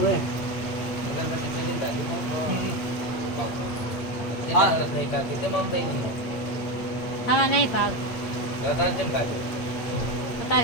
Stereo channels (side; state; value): right; late; 8.7 ms